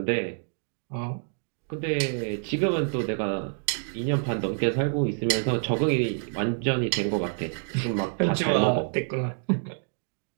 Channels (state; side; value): silent; left; 60 dB below the other